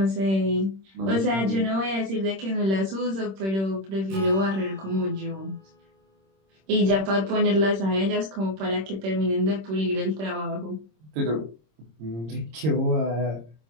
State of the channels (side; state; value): left; late; 26 ms